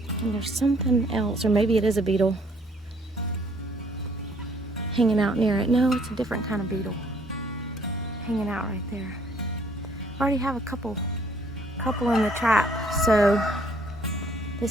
and there's something else, or maybe it is a beetle hanging out near it. No, it's a different kind of beetle hanging out right there. I already have a couple in the trap, so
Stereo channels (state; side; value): normal; both; correlation 0.63